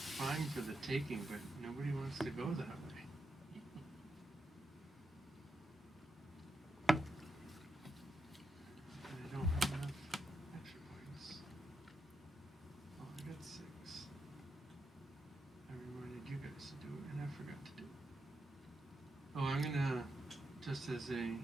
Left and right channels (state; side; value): normal; both; correlation 0.84